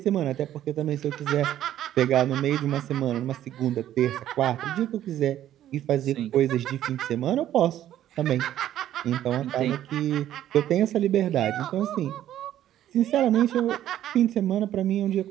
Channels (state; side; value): quieter; left; 12.0 dB